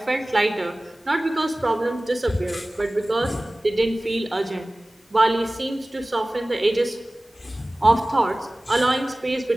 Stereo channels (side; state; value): both; normal; correlation 0.98